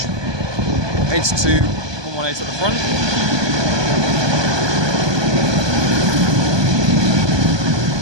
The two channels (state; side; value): late; left; 1.2 ms